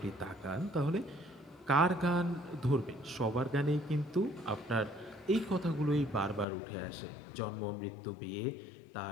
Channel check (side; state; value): right; drops out; at 6.5 s